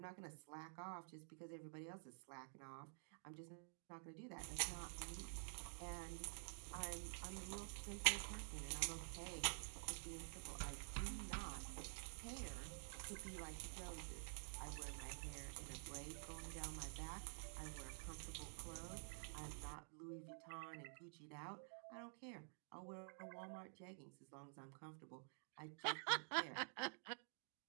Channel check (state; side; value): silent; left; digital silence